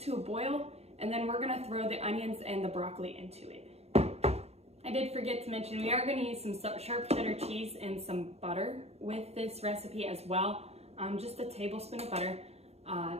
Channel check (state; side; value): late; left; 0.30 ms